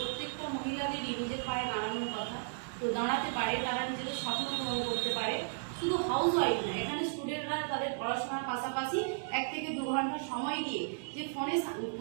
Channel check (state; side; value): silent; left; digital silence